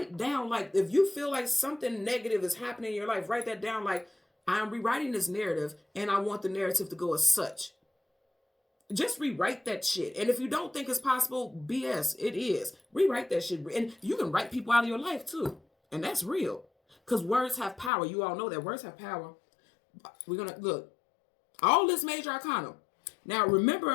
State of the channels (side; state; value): right; drops out; at 17.9 s